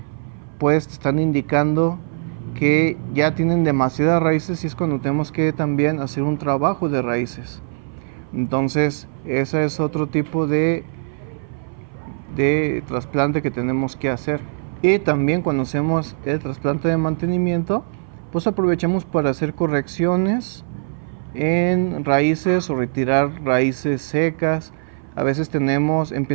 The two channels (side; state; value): left; silent; 58 dB below the other